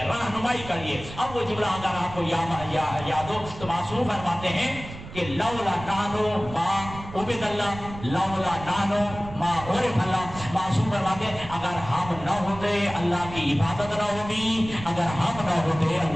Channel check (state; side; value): noise; right; rumble, 13 dB below the sound